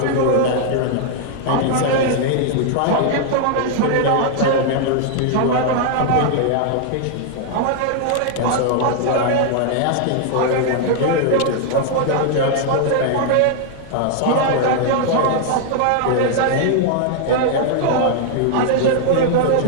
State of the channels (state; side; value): different; both; correlation 0.00